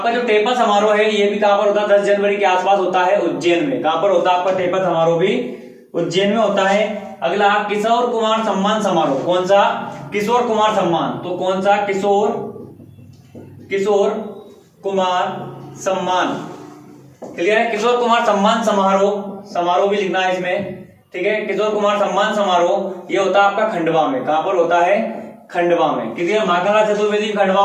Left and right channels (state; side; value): identical; both; correlation 1.00